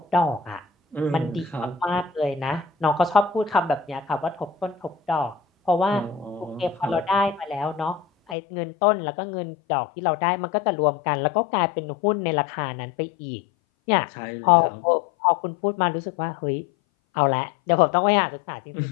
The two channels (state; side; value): drops out; right; at 8.3 s